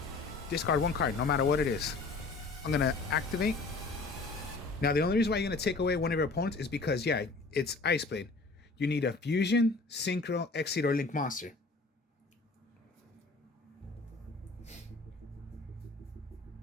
Discard 1 card, no matter what it is. I'm gonna activate. Now the only reason why you're gonna take away one of your opponents is because yeah, it's Ice Blade. You need a fusion, synchro, exceed, or link monster.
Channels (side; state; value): right; quieter; 3.7 dB